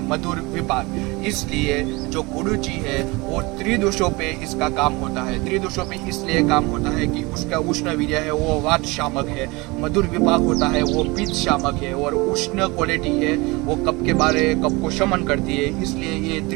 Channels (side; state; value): left; quieter; 24.4 dB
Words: मधुर विपाक। इसलिए जो गुडुचि है वो त्रिदोषों पे इसका काम होता है। त्रिदोषों पे इसलिए काम होता है कि उसका उष्ण वीर्य है वो वात शामक है, मधुर विपाक होता है वो पित्त शामक है, और उष्ण क्वालिटी है वो कफ को शमन करती है। इसलिए ये